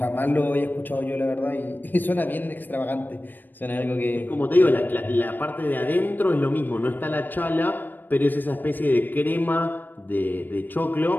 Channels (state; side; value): late; right; 0.090 ms